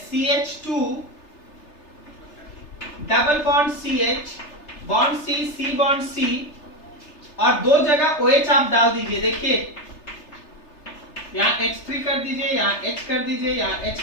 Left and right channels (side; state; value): right; late; 3.3 ms